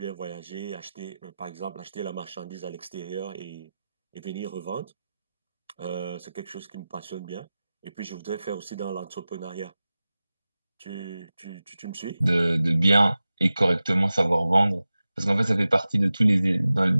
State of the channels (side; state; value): both; inverted; correlation -0.95